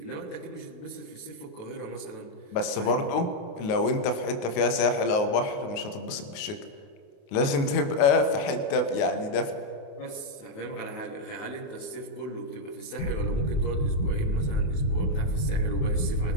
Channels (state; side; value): late; right; 28 ms